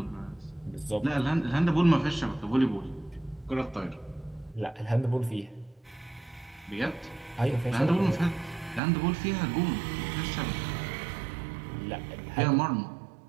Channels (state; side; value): drops out; left; at 8.8 s